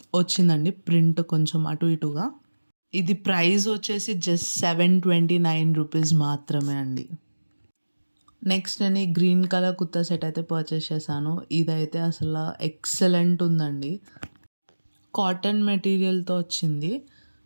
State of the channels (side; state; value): both; inverted; correlation -1.00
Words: వచ్చిందండి ప్రింట్ కొంచెం అటు ఇటుగా. ఇది ప్రైస్ వచ్చేసి జస్ట్ ₹729 మాత్రమే అండి. నెక్స్ట్ నేను ఈ గ్రీన్ కలర్ కుర్తా సెట్ అయితే పర్చేస్ చేశాను. ఇదైతే అసలు ఎక్సలెంట్ ఉందండి. కాటన్ మెటీరియల్‌తో వచ్చింది.